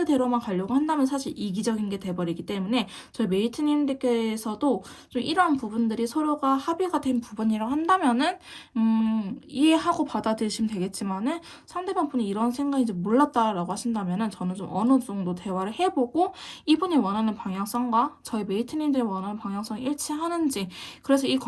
가려고 한다면 사실 이기적인 게 돼버리기 때문에 저희 메이트님들께서도 좀 이러한 부분들이 서로가 합의가 된 부분이라고 한다면은 이해하고 받아들이시면 되겠지만은 상대방 분이 이런 생각인지 몰랐다라고 하신다면은 저는 좀 어느 정도 대화를 해보고 이분이 원하는 방향성과 저희 메이트님들이 원하는 방향성이 일치하는지 그래서 이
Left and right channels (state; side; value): identical; both; correlation 1.00